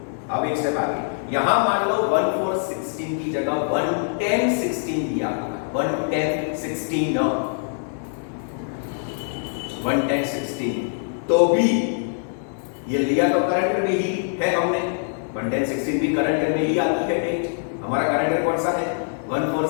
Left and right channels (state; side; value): silent; right; digital silence